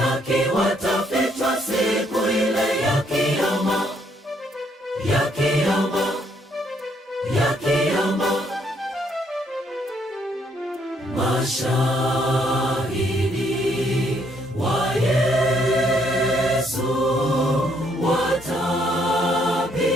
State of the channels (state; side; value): normal; both; correlation 0.70